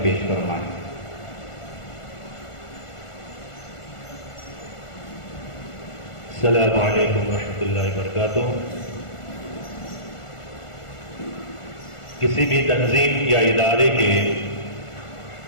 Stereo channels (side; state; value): right; late; 1.4 ms